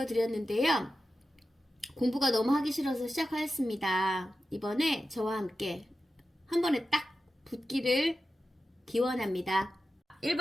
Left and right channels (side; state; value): both; normal; correlation 0.92